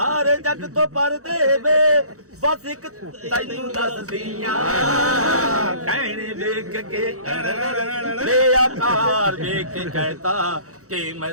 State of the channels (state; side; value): late; left; 0.65 ms